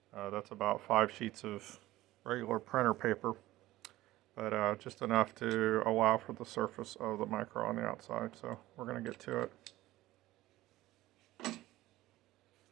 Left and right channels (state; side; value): quieter; left; 16.7 dB